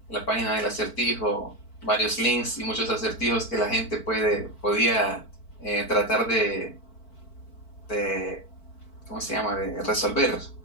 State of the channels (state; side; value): late; right; 4.5 ms